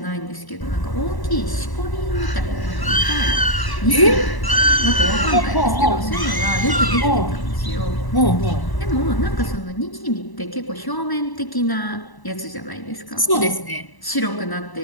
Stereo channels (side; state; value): right; late; 1.0 ms